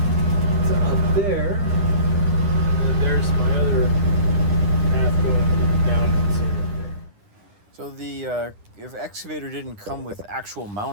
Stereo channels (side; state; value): left; late; 9.9 ms